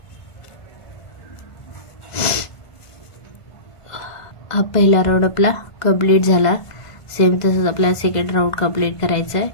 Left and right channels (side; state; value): right; late; 1.5 ms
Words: हा पहिला राऊंड आपला कंप्लीट झाला. सेम तसंच आपल्याला सेकंड राऊंड कंप्लीट करायचा आहे.